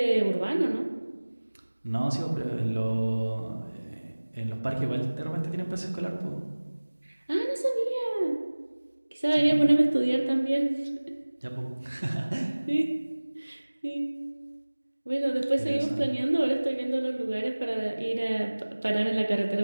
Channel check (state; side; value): inverted; both; correlation -1.00